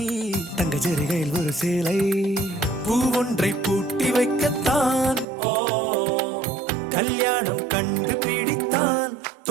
தங்க ஜரிகையில் ஒரு சேலை. பூ ஒன்றை பூட்டி வைக்கத்தான் கல்யாணம் கண்டு பிடித்தான்.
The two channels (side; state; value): left; drops out; at 5.2 s